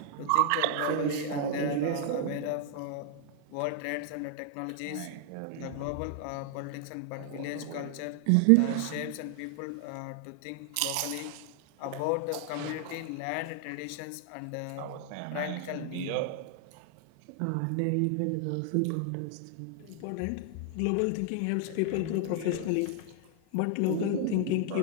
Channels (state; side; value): different; both; correlation 0.00